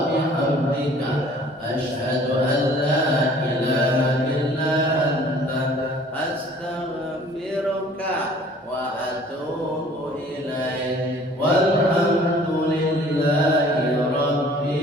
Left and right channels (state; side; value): normal; both; correlation 0.52